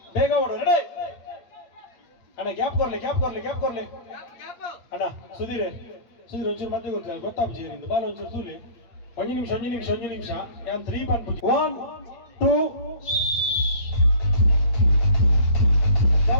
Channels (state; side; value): late; right; 8.4 ms